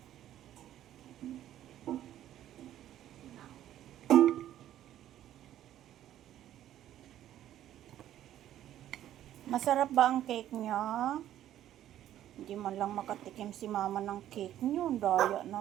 Masarap ba ang cake niya? Hindi man lang makatikim si mama ng cake niyo. Daya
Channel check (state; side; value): quieter; left; 12.1 dB